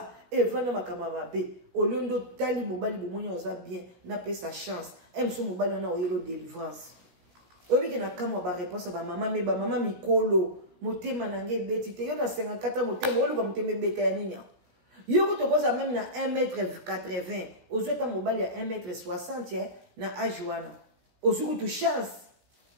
evanda makama babe olondo tali mobali bomonya oza bien na pesa chance mso mobali na oyelo délivrance obi ke na kama ba réponse ba mama me ba mama mikolo motema nange beti te yo na 54 motema oluka motema beta ya nini yo ko tokoza même na 1m80 ozweta mobali ya 1m60 na âge wana ozuku tu chance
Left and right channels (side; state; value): left; late; 16 ms